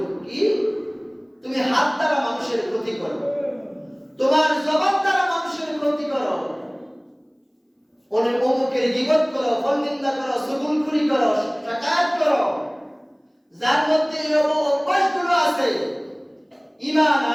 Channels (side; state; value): both; identical; correlation 1.00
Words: কি? তুমি হাত দ্বারা মানুষের ক্ষতি করো, তোমার জবান দ্বারা মানুষের ক্ষতি করো, অমুকের গীবত করো, ফলনিন্দা করো, চুগলখড়ি করো, শাকায়াত করো। যার মধ্যে এই অভ্যাসগুলো আছে, ঈমান